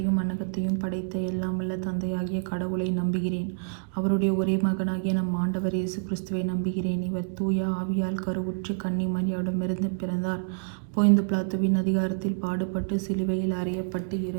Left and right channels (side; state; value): left; silent; digital silence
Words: மண்ணகத்தையும் படைத்த எல்லாம் வல்ல தந்தையாகிய கடவுளை நம்புகிறேன். அவருடைய ஒரே மகனாகிய நம் ஆண்டவர் இயேசு கிறிஸ்துவை நம்புகிறேன். இவர் தூய ஆவியால் கருவுற்று கன்னி மரியாவிடமிருந்து பிறந்தார். போய்ந்து பிலாத்துவின் அதிகாரத்தில் பாடுபட்டு சிலுவையில் அறையப்பட்டு